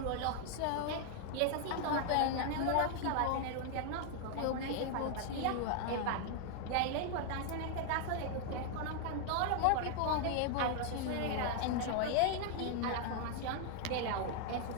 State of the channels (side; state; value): both; different; correlation 0.00